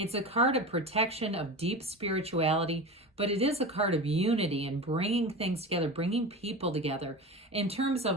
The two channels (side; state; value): both; normal; correlation 0.28